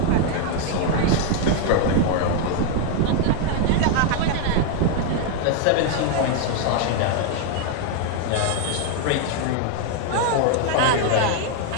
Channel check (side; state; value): both; different; correlation 0.00